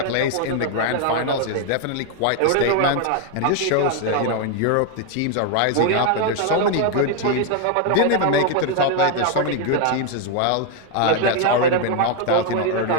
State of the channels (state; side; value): different; both; correlation 0.01